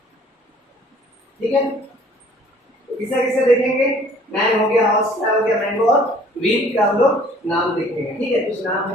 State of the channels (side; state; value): both; normal; correlation 0.55